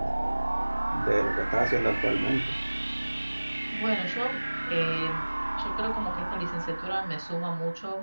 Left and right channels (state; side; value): inverted; both; correlation -1.00